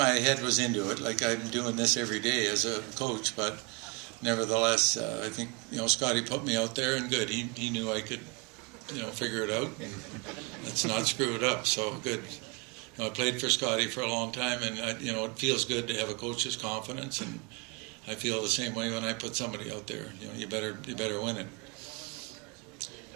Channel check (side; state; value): left; quieter; 29.8 dB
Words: head was into it. Like I'm doing this every day as a coach, but nevertheless, I think Scotty put me out there, and good. He knew I could, figure it out, and let's not screw it up. So good. I played for Scotty for a long time, and it feels good to have a coach's confidence, and I feel the same way when I put somebody out there. You better win it. You